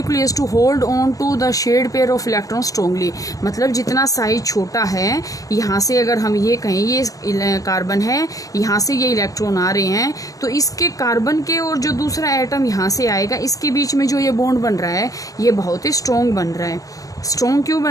to hold on to the shared pair of electron strongly. मतलब जितना साइज छोटा है, यहाँ से अगर हम ये कहें ये कार्बन है, यहाँ से ये इलेक्ट्रॉन आ रहे हैं, तो इसके कार्बन के और जो दूसरा एटम यहाँ से आएगा, इसके बीच में जो ये बॉन्ड बन रहा है ये बहुत ही स्ट्रॉन्ग बन रहा है। स्ट्रॉन्ग क्यों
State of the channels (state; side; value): late; right; 0.16 ms